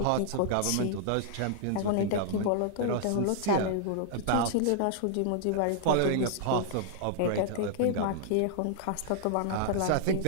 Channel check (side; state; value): both; different; correlation -0.01